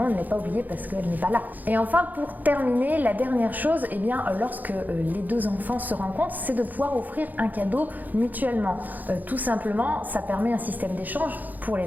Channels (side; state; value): left; late; 0.083 ms